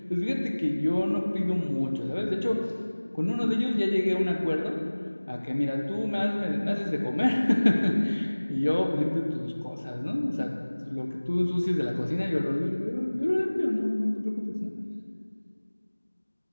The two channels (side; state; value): both; inverted; correlation -1.00